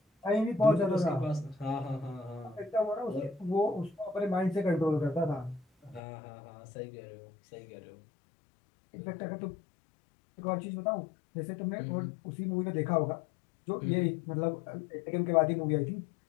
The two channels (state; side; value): drops out; right; at 6.0 s